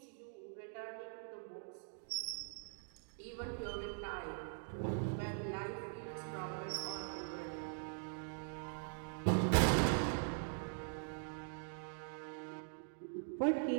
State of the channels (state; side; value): silent; left; digital silence